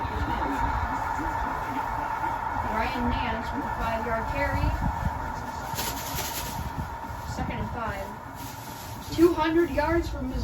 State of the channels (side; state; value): both; identical; correlation 1.00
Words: Ryan Nance with a 5-yard carry. Second and 5. 200 yards for